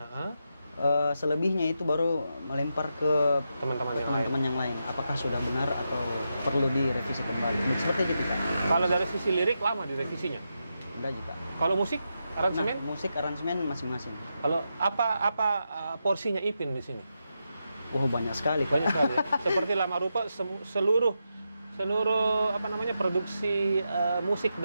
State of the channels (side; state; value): both; inverted; correlation -0.86